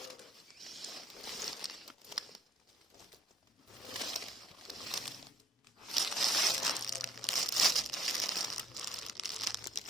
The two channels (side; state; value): both; normal; correlation 0.59